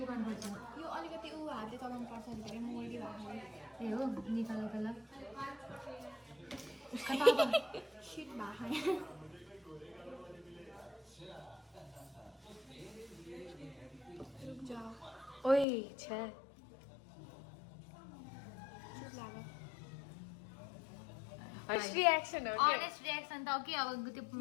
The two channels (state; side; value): drops out; right; at 15.7 s